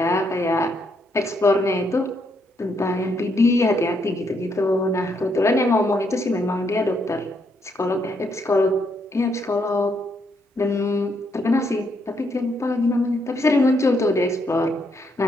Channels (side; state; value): both; normal; correlation 0.75